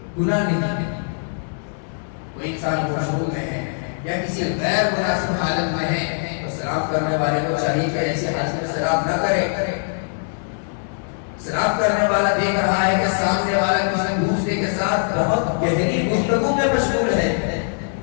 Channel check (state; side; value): silent; right; digital silence